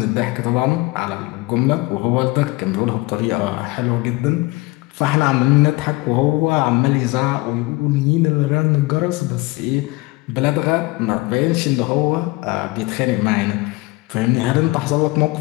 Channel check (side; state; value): right; quieter; 21.9 dB